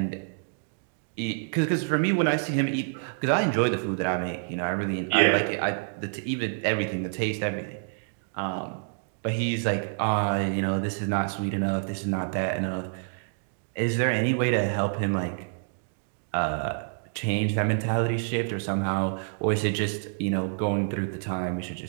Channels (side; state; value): left; silent; digital silence